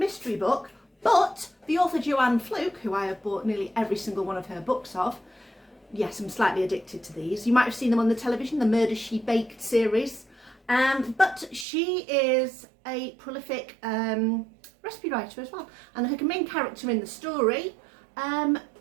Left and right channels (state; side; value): drops out; left; at 11.7 s